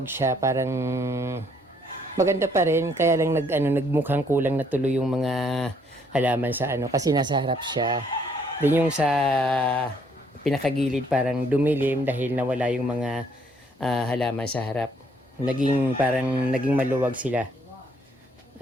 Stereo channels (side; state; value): both; normal; correlation 0.67